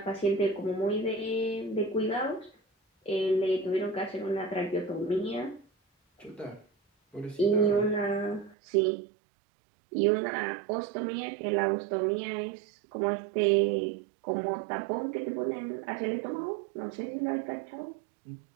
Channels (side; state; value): left; drops out; at 8.6 s